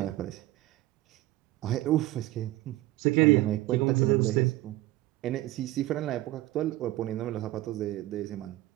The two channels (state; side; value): quieter; left; 17.0 dB